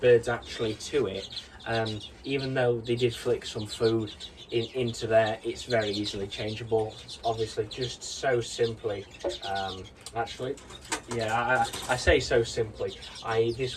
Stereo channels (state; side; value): identical; both; correlation 1.00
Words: actually to it. Even though they did flick some food into there, it's very easily changeable. It's obviously just so simply. Actually, yeah, I say so simply.